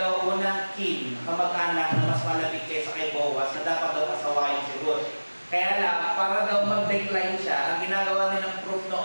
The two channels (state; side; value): inverted; both; correlation -1.00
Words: unang kin, kamag-anak na mas malapit kaysa kay Boaz na dapat daw kasawayin si Ruth. Kaya lang, para daw mag-decline siya, ang ginagawa nilang proof